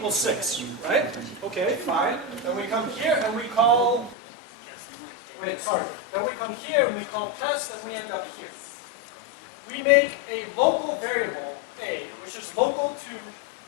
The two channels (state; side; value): drops out; right; at 4.2 s